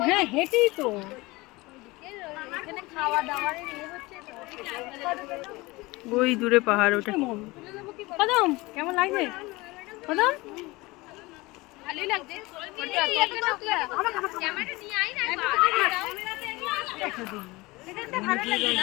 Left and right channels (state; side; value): quieter; right; 22.2 dB